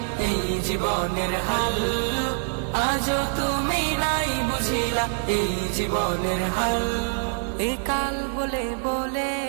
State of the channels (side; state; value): left; silent; digital silence